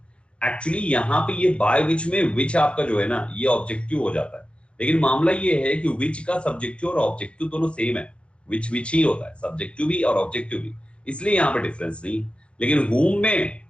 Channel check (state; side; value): late; right; 0.058 ms